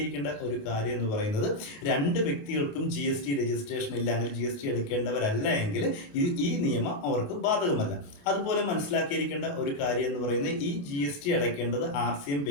ഒരു കാര്യം എന്ന് പറയുന്നത്, രണ്ട് വ്യക്തികൾക്കും ജി എസ് ടി രജിസ്ട്രേഷൻ ഇല്ല എങ്കിൽ, ജി എസ് ടി എടുക്കേണ്ടവരല്ല എങ്കിൽ ഈ നിയമം അവർക്ക് ബാധകമല്ല. അതുപോലെ മനസ്സിലാക്കിയിരിക്കേണ്ട ഒരു കാര്യം എന്ന് പറയുന്നത്, ഈ ജി എസ് ടി അടയ്ക്കേണ്ടത് ആർ സി എം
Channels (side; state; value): right; late; 29 ms